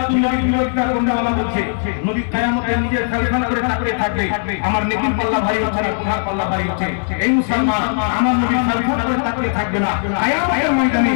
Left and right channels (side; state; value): right; silent; 67 dB below the other